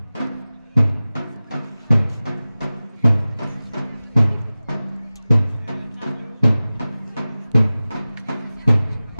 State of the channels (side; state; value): both; inverted; correlation -0.97